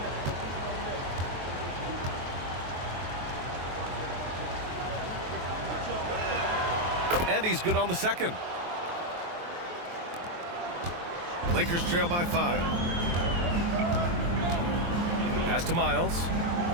And he's good on the second. Lakers trail by 5. Pass to Miles.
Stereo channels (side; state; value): left; late; 23 ms